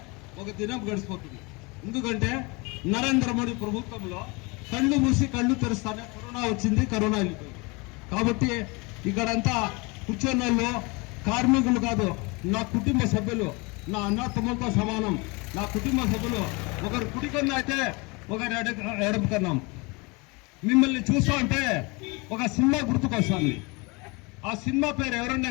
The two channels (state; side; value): quieter; right; 27.7 dB